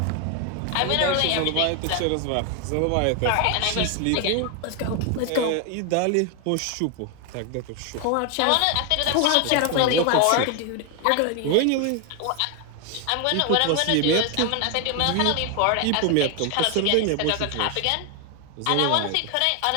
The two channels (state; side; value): different; both; correlation 0.01